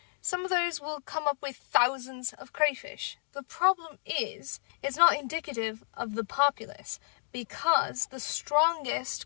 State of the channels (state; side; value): silent; right; digital silence